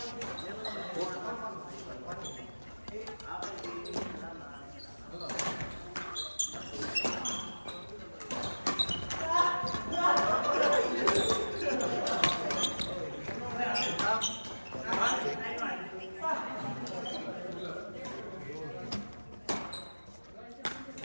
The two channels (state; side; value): inverted; both; correlation -1.00